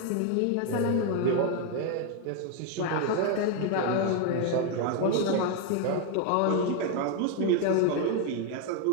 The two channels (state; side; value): different; both; correlation 0.01